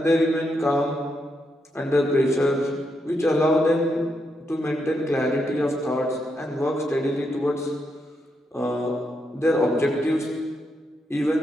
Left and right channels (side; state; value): both; normal; correlation 0.81